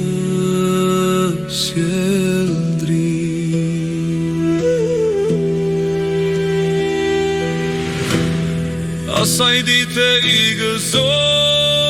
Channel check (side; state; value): right; noise; hum, 26 dB below the sound